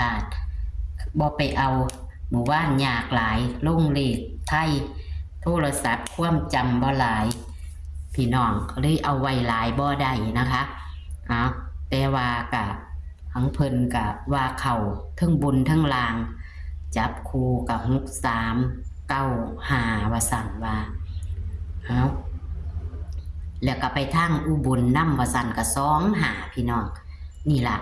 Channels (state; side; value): identical; both; correlation 1.00